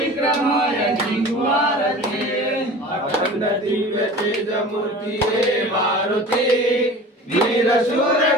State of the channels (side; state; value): both; normal; correlation 0.39